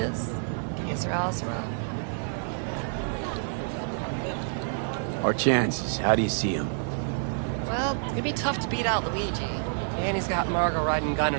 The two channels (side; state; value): left; silent; digital silence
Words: Que sera, sera. Our chances, how do you see them? Well, it's gonna be tough to beat out Luigi. And he's got Margot riding Gunner